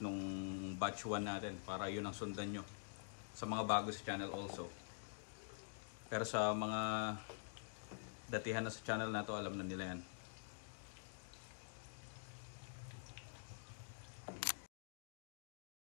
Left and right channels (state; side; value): silent; right; digital silence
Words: nung batch 1 natin para yun ang sundan nyo. Sa mga bago sa channel also. Pero sa mga datihan na sa channel na to, alam na nila yan.